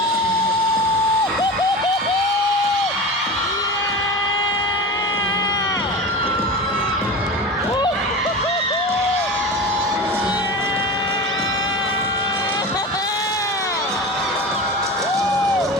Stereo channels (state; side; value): normal; both; correlation 0.30